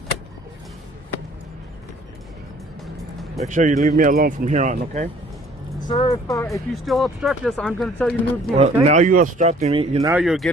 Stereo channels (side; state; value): both; normal; correlation 0.55